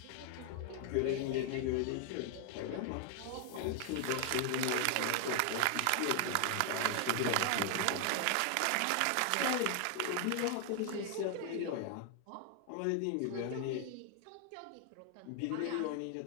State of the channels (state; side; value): different; both; correlation 0.00